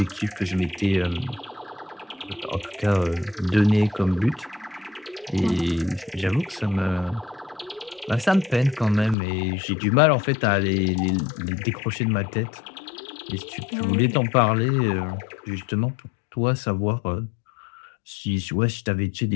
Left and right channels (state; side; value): drops out; right; at 9.2 s